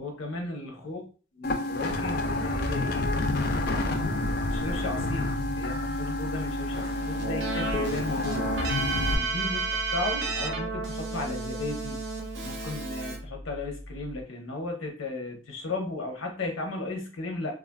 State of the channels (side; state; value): both; normal; correlation 0.36